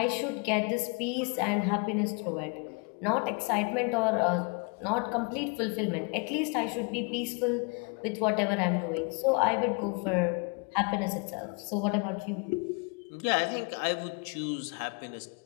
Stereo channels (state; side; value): quieter; right; 34.0 dB